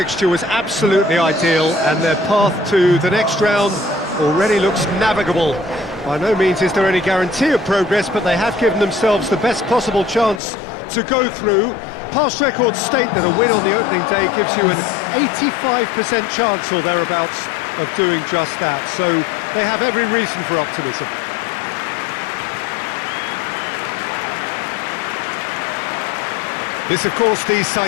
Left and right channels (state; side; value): drops out; right; at 10.4 s